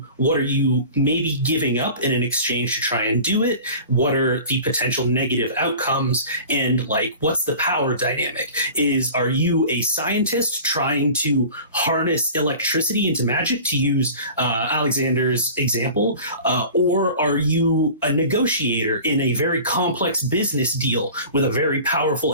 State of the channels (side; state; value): both; inverted; correlation -0.40